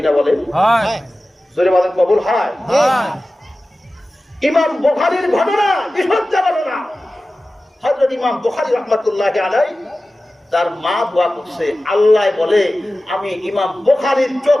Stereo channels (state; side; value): normal; both; correlation 0.96